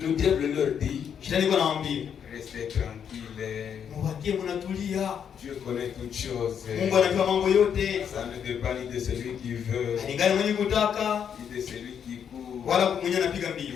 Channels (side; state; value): right; quieter; 8.0 dB